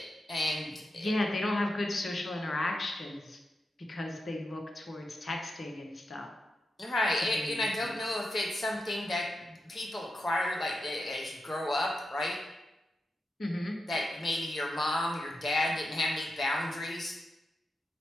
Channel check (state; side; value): normal; both; correlation 0.88